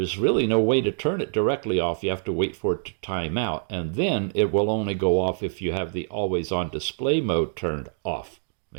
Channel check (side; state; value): left; silent; digital silence